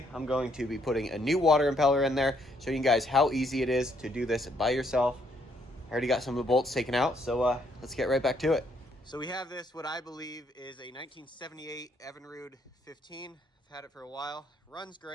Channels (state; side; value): normal; both; correlation 0.71